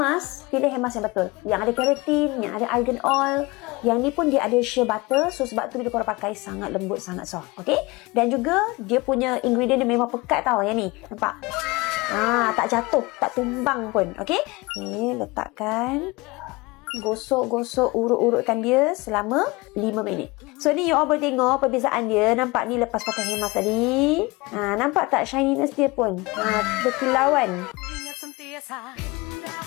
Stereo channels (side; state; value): right; quieter; 23.6 dB